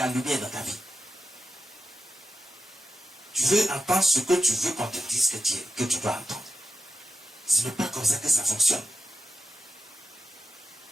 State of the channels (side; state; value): both; normal; correlation 0.91